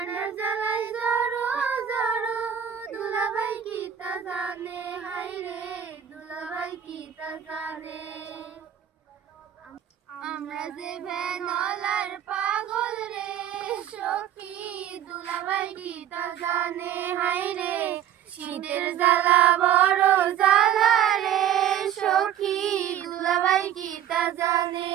জ্বালাই জড়ো জড়ো দুলাভাই কি তা জানে হাই রে দুলাভাই কি তা জানে আমরা যে ভ্যানলার পাগল রে সখী দুলাভাই কি তা জানে হাই রে শীতের জ্বালা বড় জ্বালা রে সখী দুলাভাই কি তা জানে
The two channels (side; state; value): left; quieter; 10.1 dB